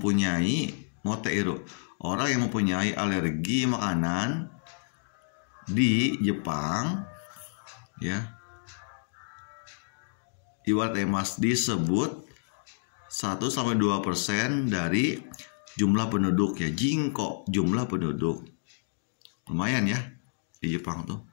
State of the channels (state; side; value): silent; right; digital silence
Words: moteiru, orang yang mempunyai alergi makanan di Jepang ya, iwate mas disebut 1-2% dari jumlah penduduk ya. Jinko, jumlah penduduk. Lumayan ya di Jepang tuh.